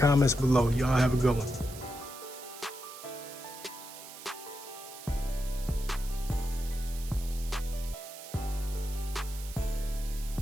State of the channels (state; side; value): noise; right; hiss, 14 dB below the sound